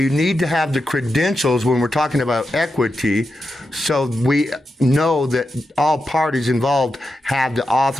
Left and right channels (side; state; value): both; normal; correlation 0.88